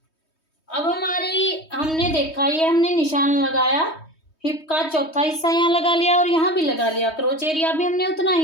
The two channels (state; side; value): late; right; 3.2 ms